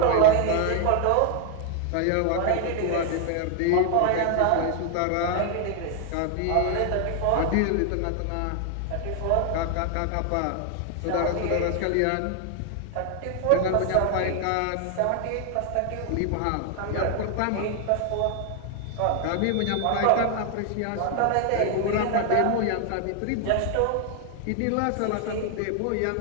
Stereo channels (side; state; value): both; different; correlation 0.00